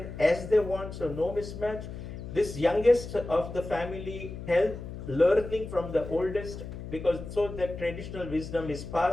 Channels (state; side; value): noise; left; hum, 10 dB below the sound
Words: as they want, so no mismatch. This youngest of the family helped learning from the oldest, because so that traditional wisdom is